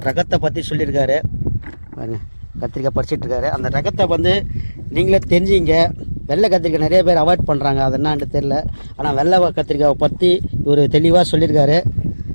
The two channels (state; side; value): inverted; both; correlation -1.00